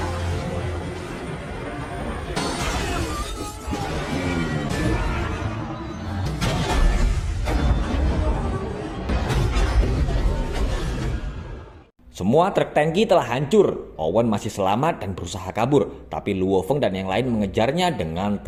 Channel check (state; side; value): identical; both; correlation 1.00